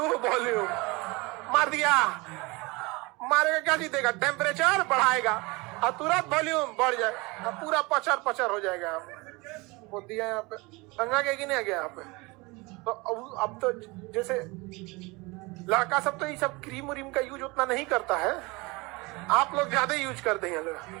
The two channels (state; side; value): quieter; left; 25.1 dB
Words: volume. मार दिया, मारेगा क्या जीतेगा? टेम्परेचर बढ़ाएगा और तुरंत वॉल्यूम बढ़ जाए और पूरा पचर पचर हो जाएगा। वो दिया यहाँ पे संगा के कि नहीं आ गया यहाँ पे? तो अब तो जैसे लड़का सब तो ये सब क्रीम व्रीम का यूज उतना नहीं करता है, आप लोग ज्यादा यूज करते हैं लोग।